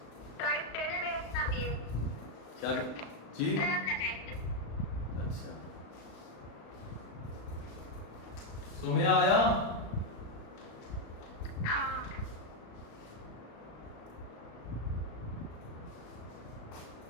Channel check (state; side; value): late; right; 35 ms